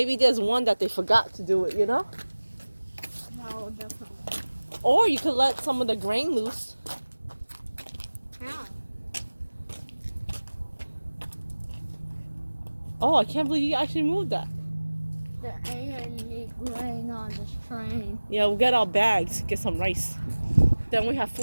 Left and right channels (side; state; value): both; inverted; correlation -1.00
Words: there's one that they forgot to do it, you know? No, definitely. Or you could let some of the grain loose. How? Oh, I can't believe you actually moved that. The A&E grain on this train. Yeah, we'll get our bags, get some rice. Then we have